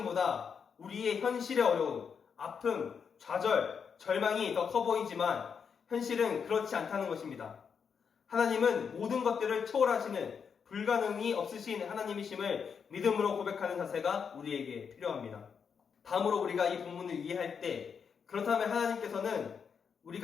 우리의 현실의 어려움, 아픔, 좌절, 절망이 더 커 보이지만 현실은 그렇지 않다는 것입니다. 하나님은 모든 것들을 초월하시는 불가능이 없으신 하나님이심을 믿음으로 고백하는 자세가 우리에게 필요합니다. 다음으로 우리가 이 본문을 이해할 때 그렇다면 하나님께서는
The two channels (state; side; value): quieter; right; 6.6 dB